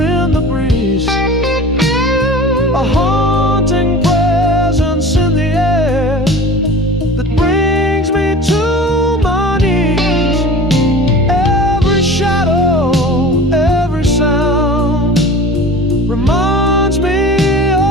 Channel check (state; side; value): normal; both; correlation 0.38